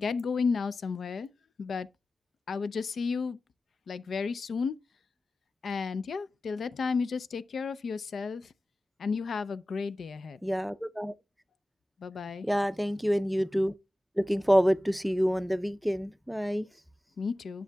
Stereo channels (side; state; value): both; normal; correlation 0.95